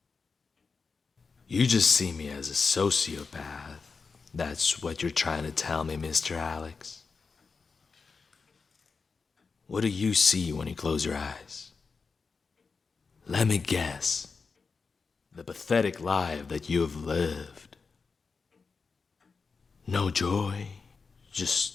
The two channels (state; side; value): quieter; right; 4.9 dB